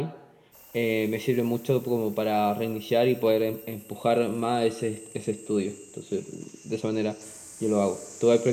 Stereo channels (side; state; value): both; identical; correlation 1.00